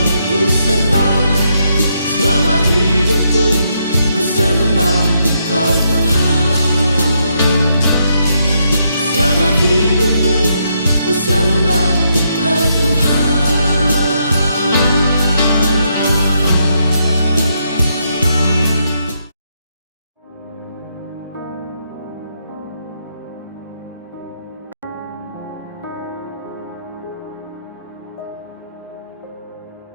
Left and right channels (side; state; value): both; inverted; correlation -0.78